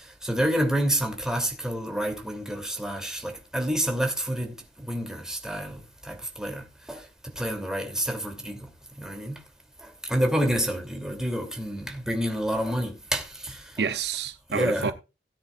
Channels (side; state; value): both; normal; correlation 0.71